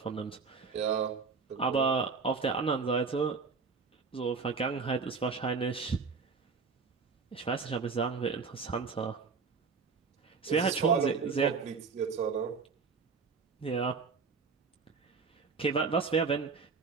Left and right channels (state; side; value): quieter; left; 4.9 dB